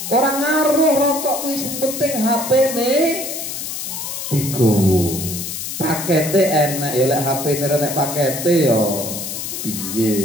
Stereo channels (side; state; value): left; noise; hiss, 6 dB below the sound